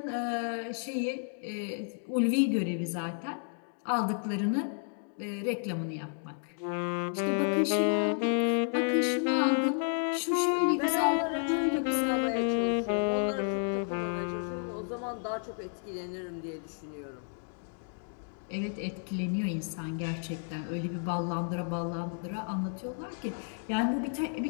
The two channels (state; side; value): silent; right; 57 dB below the other